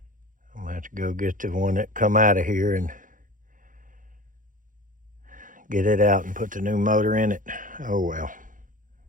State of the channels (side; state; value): left; late; 0.39 ms